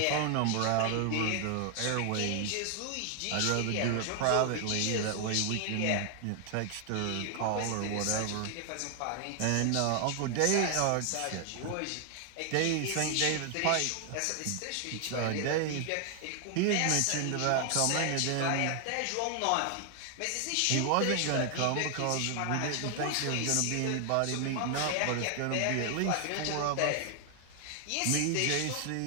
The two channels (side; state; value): both; different; correlation 0.00